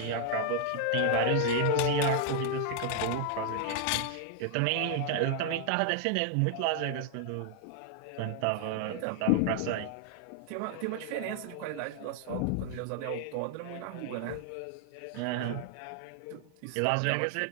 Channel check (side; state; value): both; different; correlation 0.00